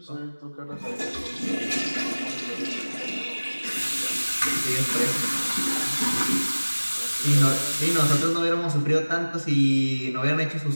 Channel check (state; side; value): inverted; both; correlation -1.00